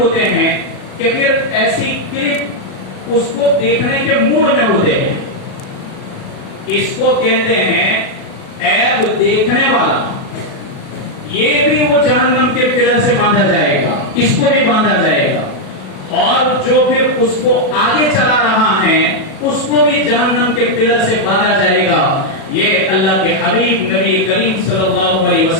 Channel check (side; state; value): right; late; 37 ms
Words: ہیں کہ پھر ایسی کلپ اس کو دیکھنے کے موڈ میں ہوتے ہیں۔ اس کو کہتے ہیں عیب دیکھنے والا۔ یہ بھی وہ جہنم کے پلر سے باندھا جائے گا، اس کو بھی باندھا جائے گا۔ اور جو پھر اس کو آگے چلا رہا ہے اس کو بھی جہنم کے پلر سے باندھا جائے گا. یہ اللہ کے حبیب نبی کریم صلی اللہ علیہ